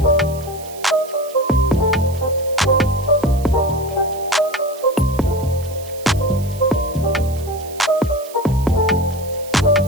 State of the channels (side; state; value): right; noise; hiss, 18 dB below the sound